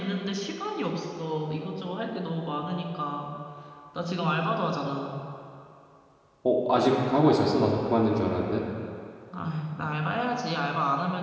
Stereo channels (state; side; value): identical; both; correlation 1.00